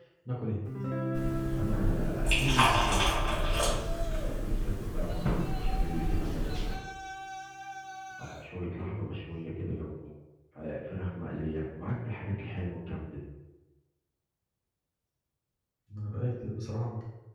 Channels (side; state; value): both; identical; correlation 1.00